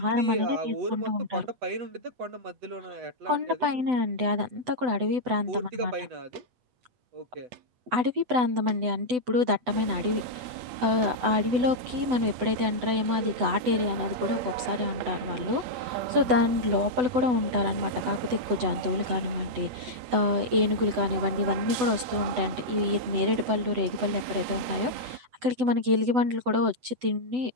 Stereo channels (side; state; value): left; late; 8.0 ms